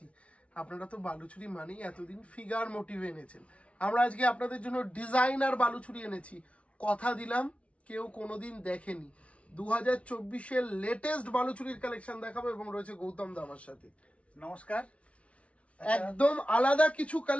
আপনারা তো বালুচুরি মানেই এতদিন ফিগার মোটিভ এনেছেন, আমরা আজকে আপনাদের জন্য ডিজাইনার বালুচুরি এনেছি। কথা দিলাম কেউ কোনোদিন দেখেনি। 2024-এর লেটেস্ট বালুচুরির কালেকশন দেখাবো এবং রয়েছে গৌতম দা আমার সাথে। নমস্কার। একদম আলাদা কিছু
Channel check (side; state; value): right; late; 0.063 ms